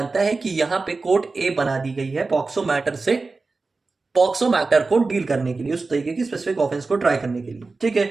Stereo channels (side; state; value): left; quieter; 3.8 dB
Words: है कि यहाँ पे कोर्ट ए बना दी गई है पॉक्सो मैटर से, पॉक्सो मैटर को डील करने के लिए, उस तरीके की स्पेसिफिक ऑफेंस को ट्राई करने के लिए, ठीक है।